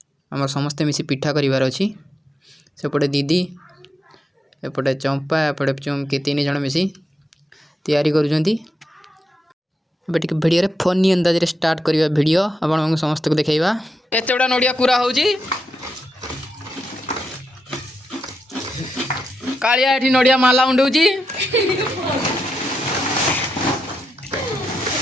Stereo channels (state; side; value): normal; both; correlation 0.85